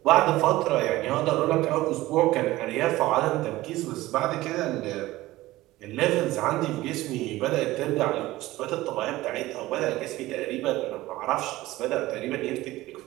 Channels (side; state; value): left; quieter; 17.5 dB